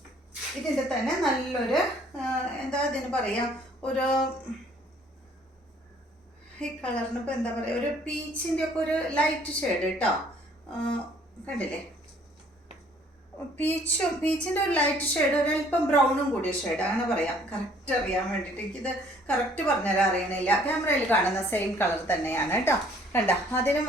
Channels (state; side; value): normal; both; correlation 0.59